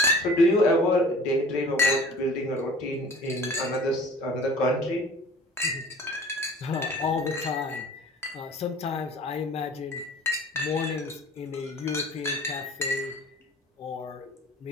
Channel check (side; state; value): both; normal; correlation 0.46